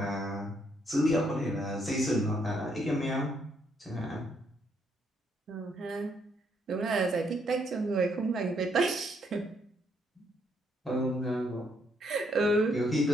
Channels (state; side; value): normal; both; correlation 0.72